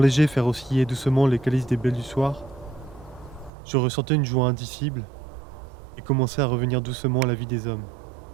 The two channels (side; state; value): left; drops out; at 3.5 s